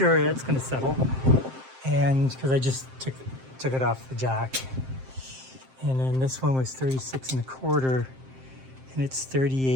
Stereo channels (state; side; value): late; left; 7.6 ms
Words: it's going to settle. And because I just took it off the jack. And then this one was 36.25, and it's